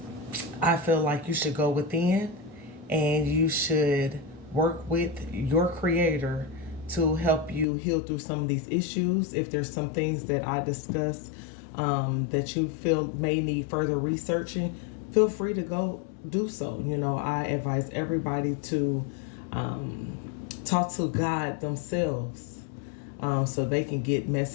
feel like you should go within and you should work with your creator to help you heal through some of these issues. If there's some things that I discuss that you feel may need further researching, feel free to go do so. I advise everybody to talk to God themselves, so they can get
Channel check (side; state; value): right; drops out; at 7.7 s